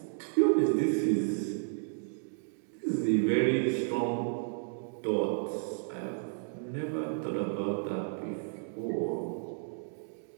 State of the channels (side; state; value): left; silent; digital silence